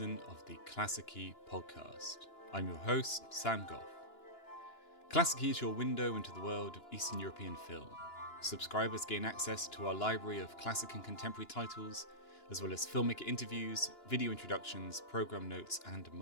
of the Klassiki Podcast. I'm your host, Sam Goff. Klassiki is your window into the world of Eastern European film. Subscribers gain access to our library of classic and contemporary titles, as well as filmmaker interviews, video introductions, program notes, and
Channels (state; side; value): late; right; 2.9 ms